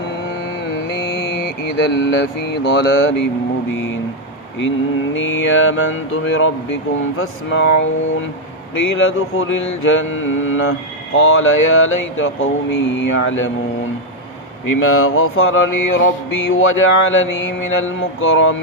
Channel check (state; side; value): normal; both; correlation 0.02